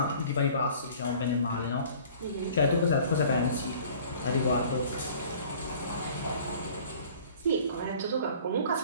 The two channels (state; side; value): inverted; both; correlation -0.49